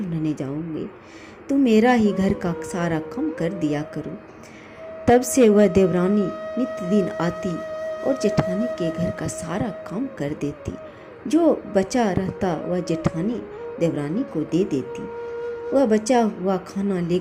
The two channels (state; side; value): identical; both; correlation 1.00